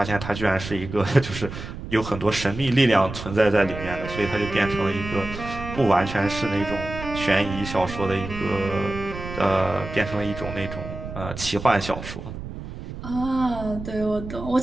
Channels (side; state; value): right; noise; rumble, 10 dB below the sound